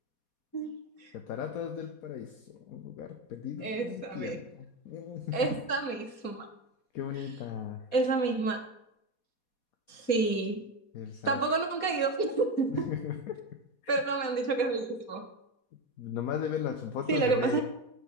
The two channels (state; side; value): late; right; 4.2 ms